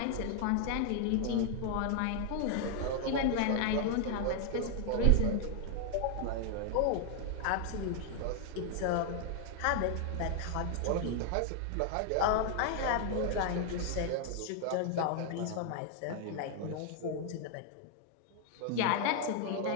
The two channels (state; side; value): different; both; correlation 0.00